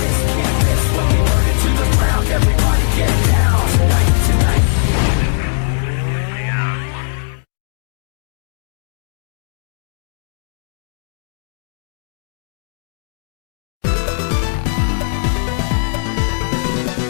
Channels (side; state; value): right; silent; digital silence